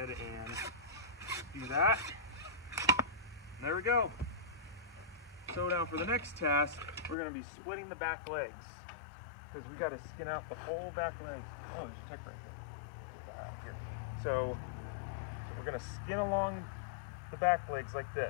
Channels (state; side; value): drops out; right; at 7.2 s